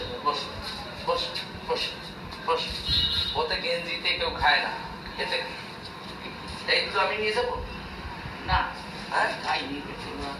বস বস বস বস। ওতে গেঞ্জিতে কেউ খায় না, এতে এইগুলো আমি নিয়ে যাবো না। হ্যাঁ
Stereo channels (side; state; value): both; identical; correlation 1.00